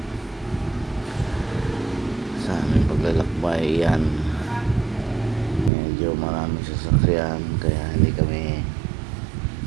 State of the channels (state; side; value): drops out; left; at 5.7 s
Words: Sa aming paglalakbay yan, medyo maraming sasakyan, kaya hindi kami,